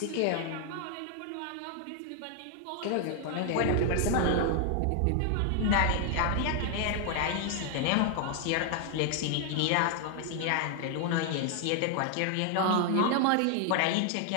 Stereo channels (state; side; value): different; both; correlation 0.00